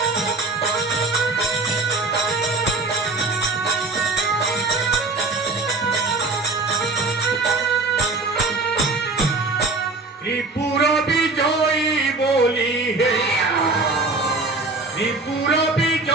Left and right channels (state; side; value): quieter; left; 3.6 dB